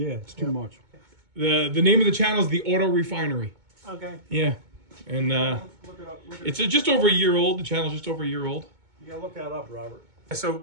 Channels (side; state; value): left; late; 2.2 ms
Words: it's too much. The name of the channel is the Auto Refinery. Okay. Yeah, and Look it up. it's just over a year old. The channel's just over a year old. You gotta look that up, Robert.